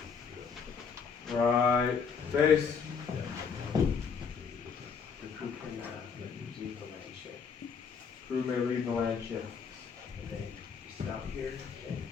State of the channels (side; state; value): right; quieter; 6.1 dB